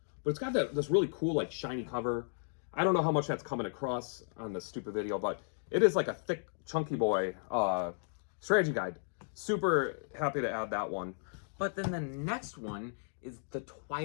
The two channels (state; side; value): silent; right; digital silence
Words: But it's got this really cool, like, shiny cover. I don't know how much that's coming across on this stupid video, but it is like a thick, chunky boy strategy guide. Super happy to add that one. But then the next one is the